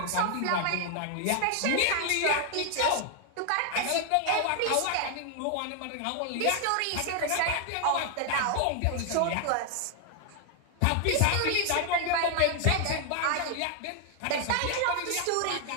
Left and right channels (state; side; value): different; both; correlation 0.00